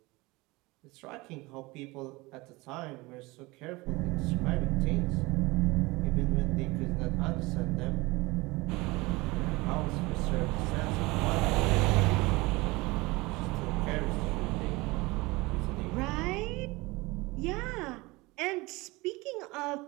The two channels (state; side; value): quieter; left; 22.8 dB